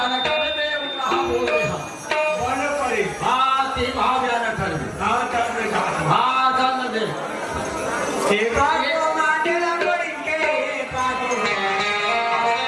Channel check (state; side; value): identical; both; correlation 1.00